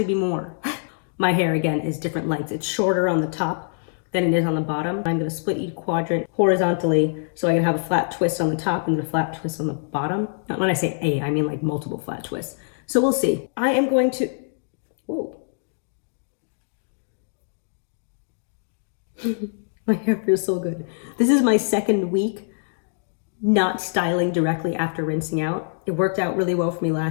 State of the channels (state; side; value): silent; right; digital silence